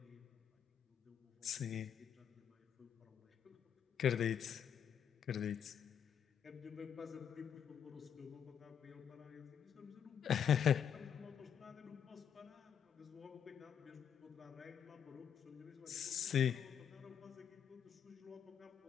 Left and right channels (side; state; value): right; quieter; 8.2 dB